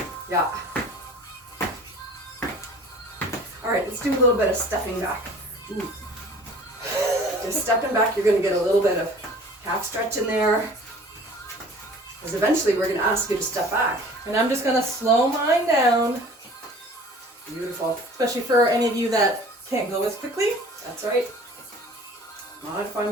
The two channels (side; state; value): both; normal; correlation 0.47